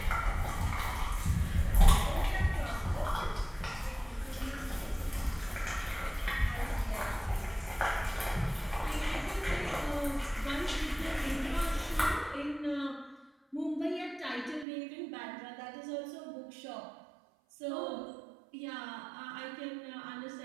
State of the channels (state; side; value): drops out; left; at 14.7 s